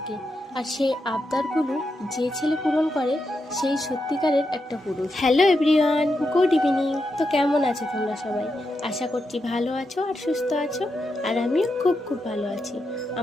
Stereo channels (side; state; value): both; normal; correlation 0.85